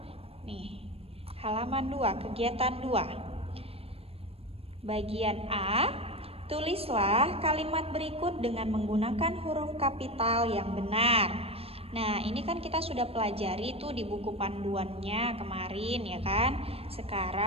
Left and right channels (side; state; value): left; late; 0.28 ms